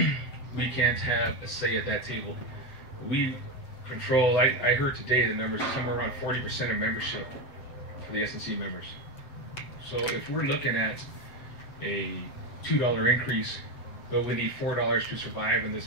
we can't have a say at that table. We control, I heard today the numbers are somewhere around 40% of membership for the S&C members. So if we're looking at a $2 increase, but we need $4 to survive in this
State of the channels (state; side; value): late; right; 7.8 ms